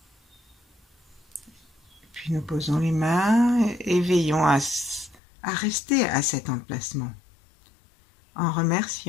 Puis nous posons les mains et veillons à rester à cet emplacement, en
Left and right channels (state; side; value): drops out; right; at 5.2 s